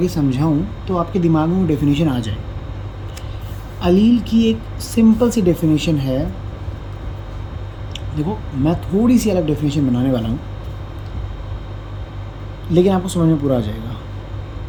समझाऊं तो आपके दिमाग में वो डेफिनेशन आ जाए। अलील की एक सिंपल सी डेफिनेशन है। देखो, मैं थोड़ी सी अलग डेफिनेशन बनाने वाला हूँ, लेकिन आपको समझ में पूरा आ जाएगा।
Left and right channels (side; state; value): both; identical; correlation 1.00